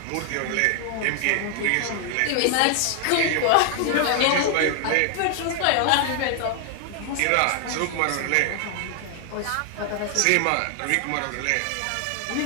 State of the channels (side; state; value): both; different; correlation 0.00